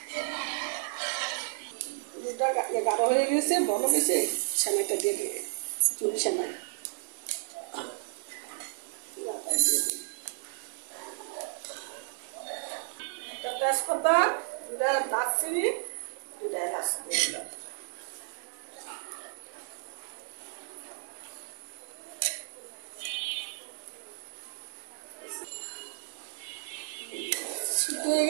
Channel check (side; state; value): left; silent; digital silence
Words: দুধটা গাঢ় হয়ে গেছে, বড় গেছে, সেমাইটা দিয়ে দিই। ঝুরি সেমাই একটা তেজপাতা, দুটা দারচিনি, দুটা এলাচ দিয়ে দিলাম। সিদ্ধ হয়ে